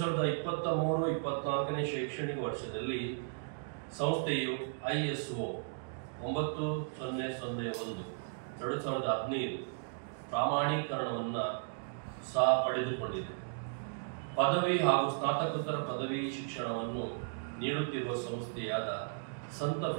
ಶೈಕ್ಷಣಿಕ ವರ್ಷದಲ್ಲಿ ಸಂಸ್ಥೆಯು ISO 9001 2015 ಪ್ರಾಮಾಣೀಕರಣವನ್ನು ಸಹ ಪಡೆದುಕೊಂಡಿದೆ. ಪದವಿ ಹಾಗೂ ಸ್ನಾತಕೋತ್ತರ ಪದವಿ ಶಿಕ್ಷಣವನ್ನು ನೀಡುತ್ತಿರುವ ಸಂಸ್ಥೆಯಾದ ಸಂತ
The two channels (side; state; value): left; silent; digital silence